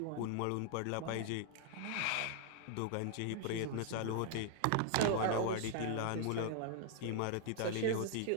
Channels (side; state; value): both; different; correlation 0.00